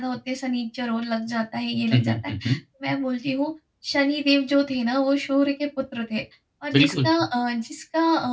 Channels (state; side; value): identical; both; correlation 1.00